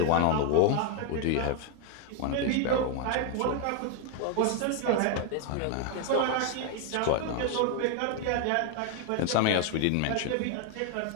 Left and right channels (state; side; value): different; both; correlation 0.01